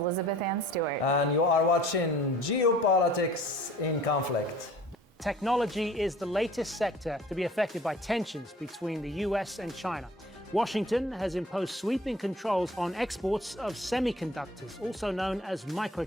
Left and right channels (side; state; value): both; normal; correlation 0.49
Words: Ann Stewart. And you are watching Geopolitics in Conflict. Technology is the latest sector to be affected by tensions between the US and China. Washington has imposed sweeping controls on exports of semiconductors, also known as